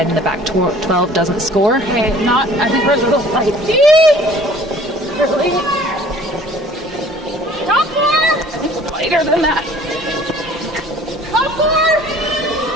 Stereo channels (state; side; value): normal; both; correlation 0.51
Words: in the back 12 doesn't score. Okay, not. I think we're a little light. Really? Top four! I think we're lighter than that. Top four!